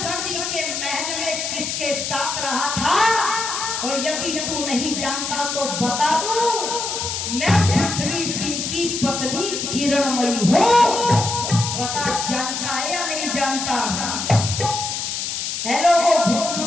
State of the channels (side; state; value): left; noise; hiss, 3 dB below the sound